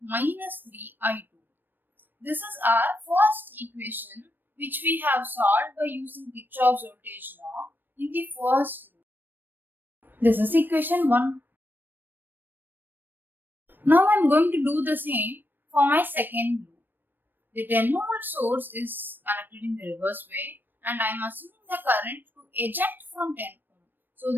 minus 3I2. This is our first equation which we have solved by using Kirchhoff's voltage law in the first loop. This is equation 1. Now I am going to do the same for my second loop. The 10 volt source is connected in the reverse way and I am assuming the current to eject from 10 ohm. So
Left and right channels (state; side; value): late; left; 0.092 ms